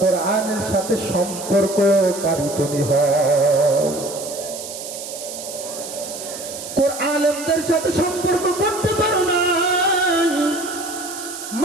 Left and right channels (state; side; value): noise; right; hiss, 10 dB below the sound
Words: কোরআনের সাথে সম্পর্ককারী তুমি হও। কোরআনদের সাথে সম্পর্ক করতে পারো না,